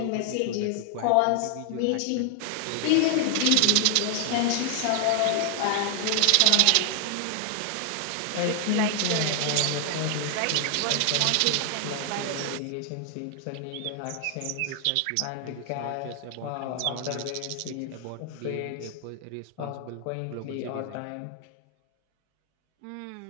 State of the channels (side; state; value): both; different; correlation 0.00